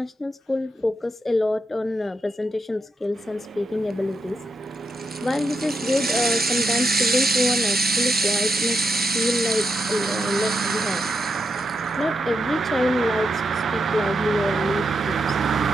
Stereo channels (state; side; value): normal; both; correlation 0.83